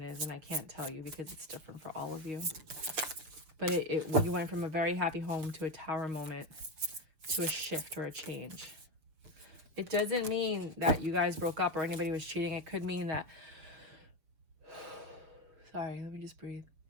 is, and I can't tell you because it's different for all of you. But you went from a very happy home to a tower moment, to a shift or a change. It doesn't mean that you guys broke up or anybody was cheating. It could mean that... Sorry, let me just breathe.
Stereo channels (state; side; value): late; left; 7.0 ms